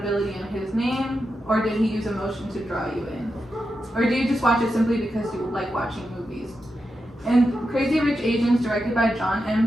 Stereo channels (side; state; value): both; normal; correlation 0.88